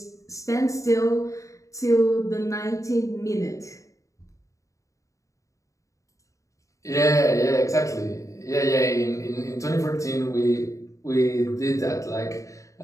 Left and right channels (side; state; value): right; late; 0.16 ms